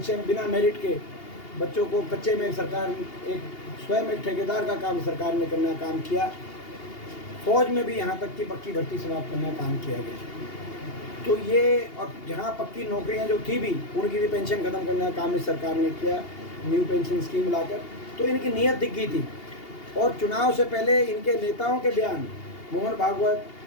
बिना मेरिट के बच्चों को कच्चे में सरकार स्वयं एक ठेकेदार का काम सरकार ने करने का काम किया। फौज में भी यहाँ तक कि पक्की भर्ती समाप्त करने का काम किया गया। तो ये, और जहाँ पक्की नौकरियाँ जो थी भी, उनकी भी पेंशन खत्म करने का काम इस सरकार ने किया, न्यू पेंशन स्कीम लाकर। तो इनकी नीयत दिख गई थी। और चुनाव से पहले इनके नेताओं के बयान, मोहन भागवत,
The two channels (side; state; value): right; late; 2.8 ms